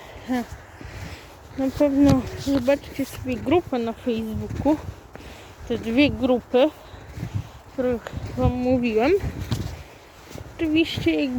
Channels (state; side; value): identical; both; correlation 1.00